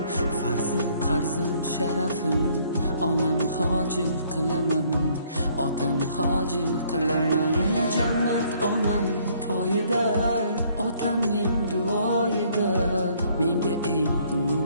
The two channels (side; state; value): both; inverted; correlation -0.63